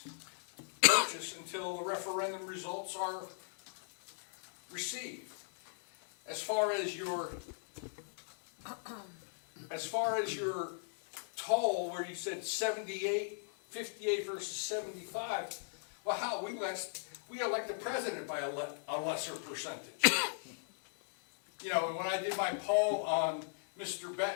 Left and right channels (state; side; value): silent; right; 53 dB below the other